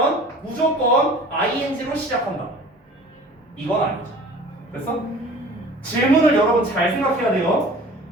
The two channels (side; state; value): both; normal; correlation 0.45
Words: 무조건 ing로 시작한다. 이건 아니죠. 됐어? 질문을 여러분 잘 생각해야 돼요.